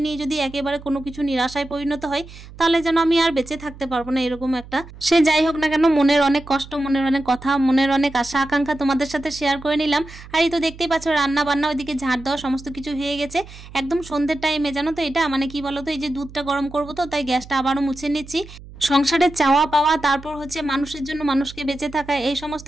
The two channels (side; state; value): right; noise; hum, 17 dB below the sound